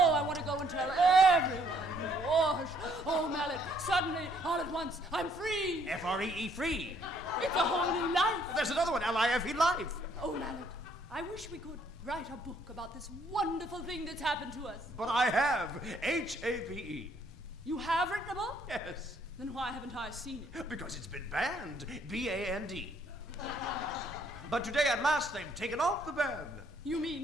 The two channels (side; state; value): both; normal; correlation 0.66